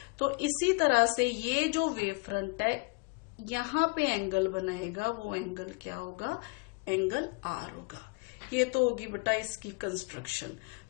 तो इसी तरह से ये जो वेव फ्रंट है यहां पे एंगल बनाएगा, वो एंगल क्या होगा, एंगल आर होगा। ये तो होगी बेटा इसकी कंस्ट्रक्शन।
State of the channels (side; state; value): right; quieter; 29.4 dB